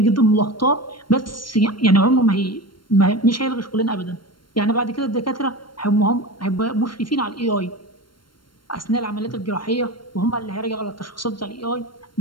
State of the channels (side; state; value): right; late; 0.72 ms